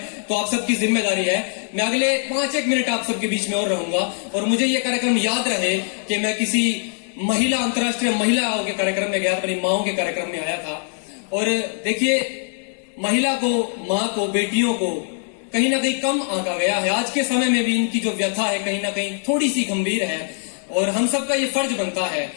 तो आप सबकी जिम्मेदारी है, मैं अगले 5-1 मिनट आप सबके बीच में और रहूंगा और मुझे ये कार्यक्रम याद रहे कि मैं किसी महिला, अंतर्राष्ट्रीय महिलाओं के कार्यक्रम में गया, अपनी माओं के कार्यक्रम में आया था। और देखिए, महिला को, माँ को, बेटियों को कहीं ना कहीं कम आंका गया है। आज के समय में भी इनकी जो व्यथा है कहीं ना कहीं थोड़ी सी गंभीर है और हम सबका ये फर्ज बनता है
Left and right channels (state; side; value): silent; right; 55 dB below the other